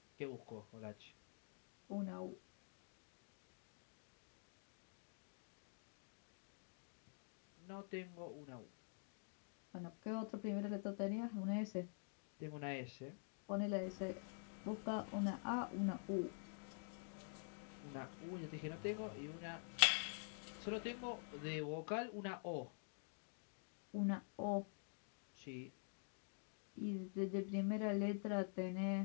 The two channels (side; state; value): right; silent; digital silence